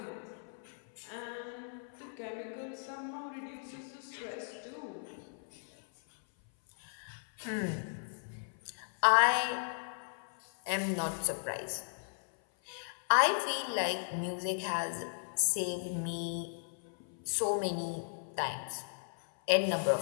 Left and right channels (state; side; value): silent; right; 54 dB below the other